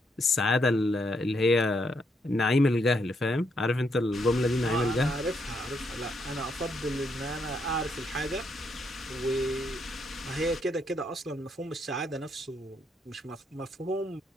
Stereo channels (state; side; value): normal; both; correlation 0.76